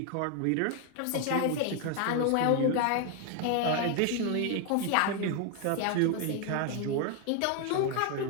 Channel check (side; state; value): both; different; correlation 0.01